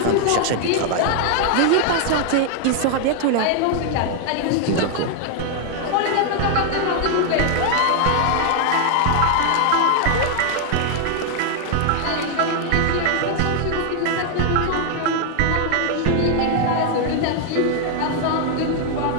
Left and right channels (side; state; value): both; different; correlation 0.00